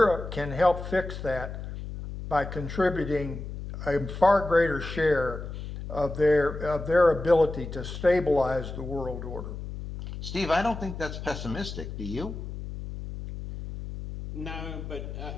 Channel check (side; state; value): left; noise; hum, 8 dB below the sound